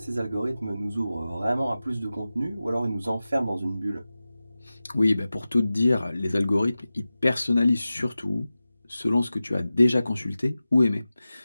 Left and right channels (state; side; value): inverted; both; correlation -0.95